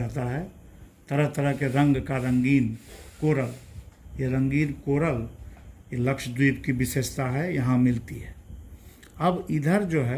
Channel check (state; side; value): identical; both; correlation 1.00